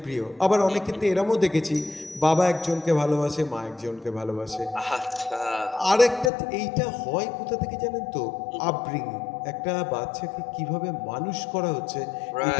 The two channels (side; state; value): right; drops out; at 6.3 s